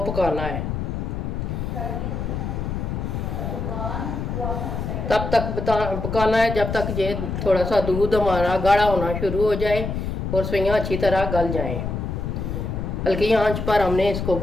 पकाना है। तब तक पकाना है जब तक ये थोड़ा सा दूध हमारा गाढ़ा होना शुरू हो जाए और सफेइयाँ अच्छी तरह गल जाएं। हल्की आंच पर हमने इसको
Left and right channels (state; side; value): noise; left; rumble, 3 dB below the sound